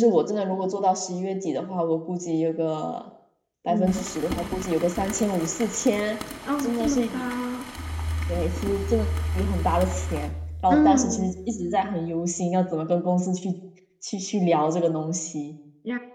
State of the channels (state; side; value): identical; both; correlation 1.00